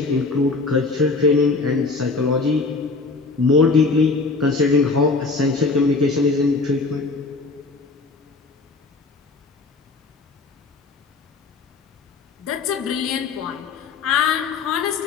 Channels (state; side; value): quieter; right; 3.9 dB